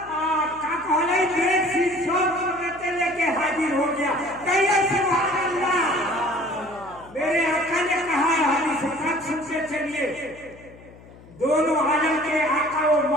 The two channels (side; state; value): left; noise; hum, 22 dB below the sound